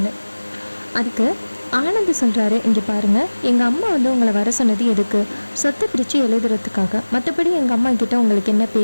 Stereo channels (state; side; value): inverted; both; correlation -1.00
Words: அதுக்கு ஆனந்த் சொல்கிறாரு, இங்கே பாருங்கள், எங்கள் அம்மா உங்களை வர சொன்னது எதுக்கு? சொத்தை பிரித்து எழுதுறதுக்காக, மற்றபடி எங்கள் அம்மா கிட்ட உங்களுக்கு என்ன